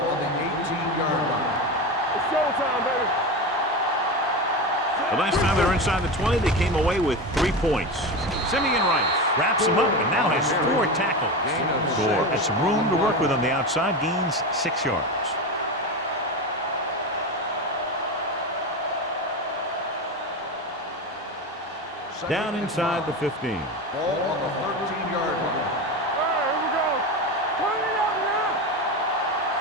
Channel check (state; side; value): normal; both; correlation 0.21